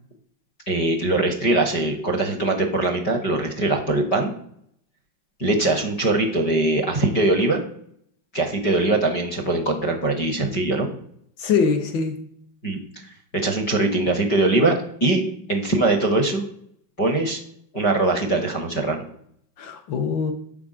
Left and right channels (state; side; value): late; right; 5.2 ms